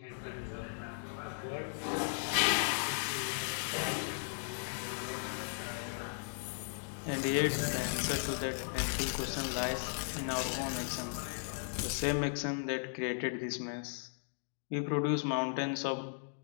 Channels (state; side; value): silent; right; digital silence